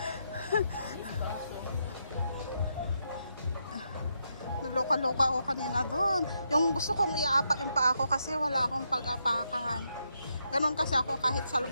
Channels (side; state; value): both; inverted; correlation -0.81